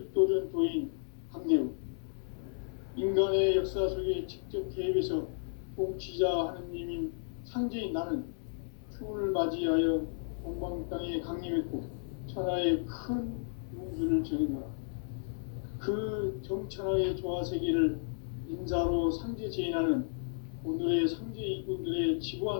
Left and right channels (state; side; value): silent; right; digital silence